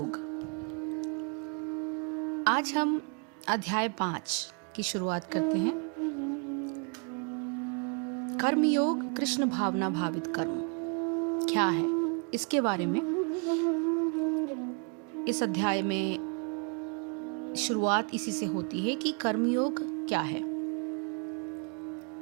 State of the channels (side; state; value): left; quieter; 37.8 dB